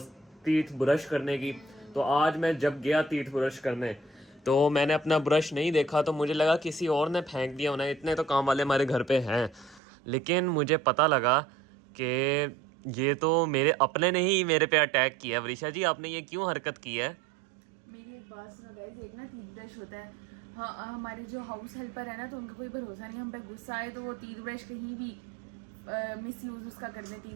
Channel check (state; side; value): drops out; left; at 9.8 s